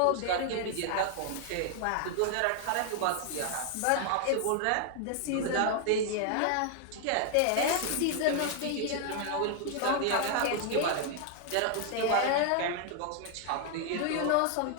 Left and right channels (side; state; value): both; different; correlation 0.00